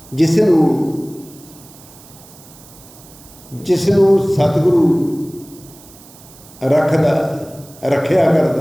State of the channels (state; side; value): noise; right; hiss, 22 dB below the sound